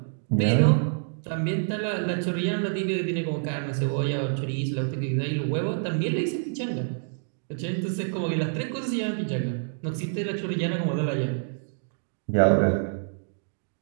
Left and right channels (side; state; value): left; silent; digital silence